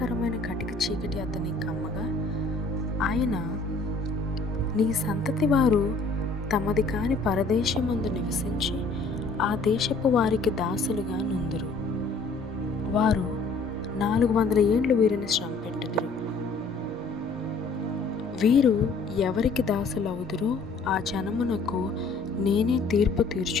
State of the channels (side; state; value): right; quieter; 3.8 dB